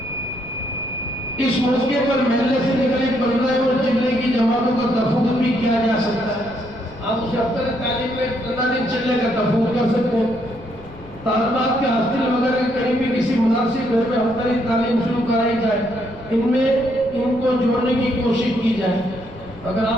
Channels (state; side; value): noise; left; rumble, 19 dB below the sound